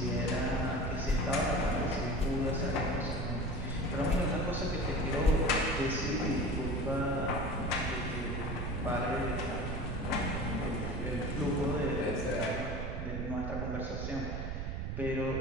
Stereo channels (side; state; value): right; noise; rumble, 3 dB below the sound